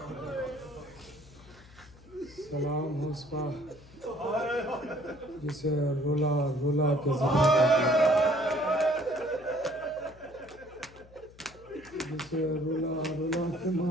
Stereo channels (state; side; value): noise; left; hum, 23 dB below the sound